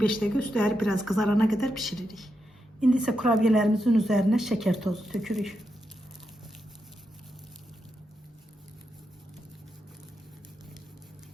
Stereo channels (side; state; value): both; normal; correlation 0.85